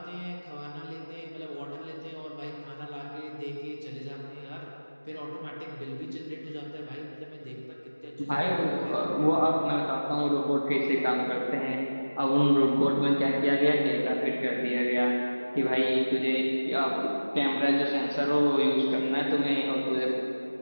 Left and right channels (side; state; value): both; inverted; correlation -1.00